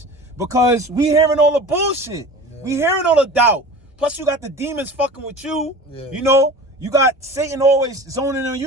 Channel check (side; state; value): both; normal; correlation 0.37